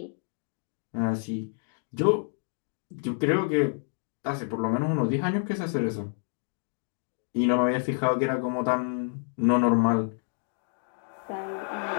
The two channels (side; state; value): right; silent; digital silence